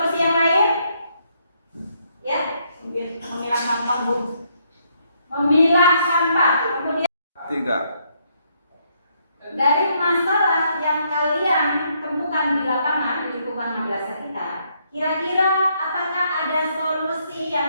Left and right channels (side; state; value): both; inverted; correlation -0.73